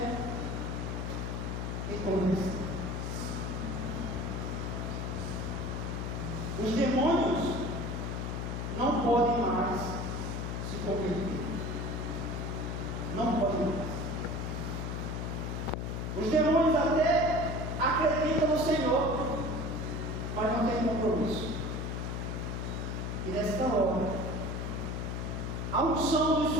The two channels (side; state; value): left; noise; hum, 3 dB below the sound